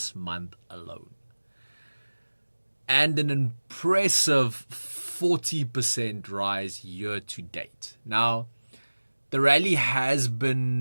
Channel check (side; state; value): both; inverted; correlation -1.00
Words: month alone, and an impressive 40% rise year to date. Now, the rally has